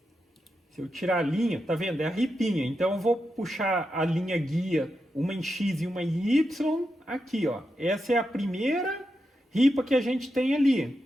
se eu tirar a linha, tá vendo? É a ripinha. Então eu vou puxar a linha guia, uma em X e uma em Y, aqui, ó. Essa é a primeira ripa que a gente tem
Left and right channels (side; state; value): both; normal; correlation 0.87